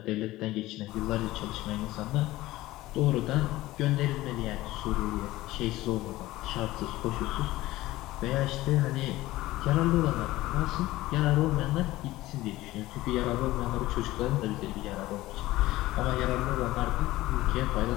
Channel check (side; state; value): right; quieter; 17.3 dB